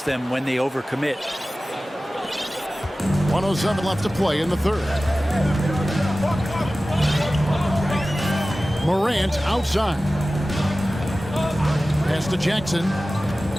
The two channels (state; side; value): normal; both; correlation 0.96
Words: them when they overcommit. 1:07 left to play in the 3rd. Morant outside. Pass to Jackson.